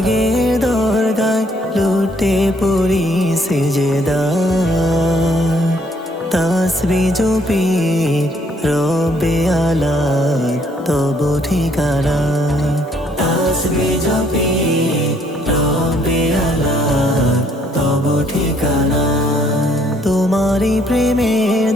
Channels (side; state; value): both; normal; correlation 0.66